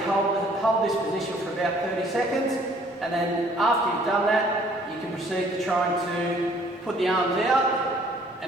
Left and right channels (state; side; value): normal; both; correlation 0.59